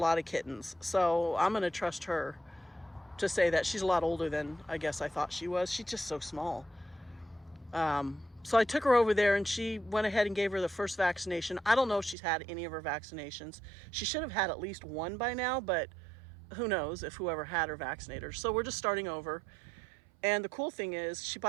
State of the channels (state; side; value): drops out; left; at 12.2 s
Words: of kittens. So I'm going to trust her to say that she's a lot older than I guess I thought she was. She's just so small. So I took her over there, and she went ahead and gave her the first vaccination. I don't know if she's had any of her vaccinations. She should have had at least one by now, but who knows if whoever had her vaccinated her. So we're just starting over. And the cool thing is she